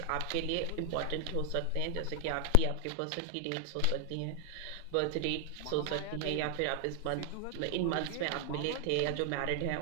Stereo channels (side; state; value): both; different; correlation 0.00